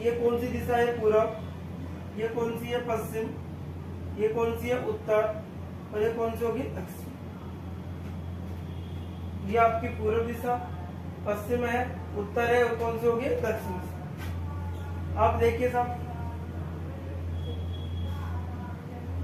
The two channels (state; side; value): identical; both; correlation 1.00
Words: ये कौन सी दिशा है? पूरब। ये कौन सी है? पश्चिम। ये कौन सी है? उत्तर। और ये कौन सी होगी? दक्षिण। ये आपकी पूर्व दिशा पश्चिम है, उत्तर है, और कौन सी होगी? दक्षिण। आप देखिए साहब,